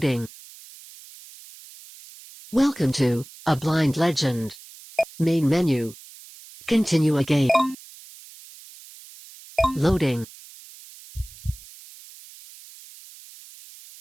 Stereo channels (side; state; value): right; noise; hiss, 20 dB below the sound